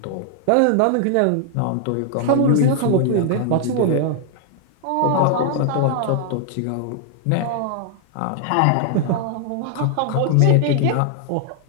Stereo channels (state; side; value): different; both; correlation 0.00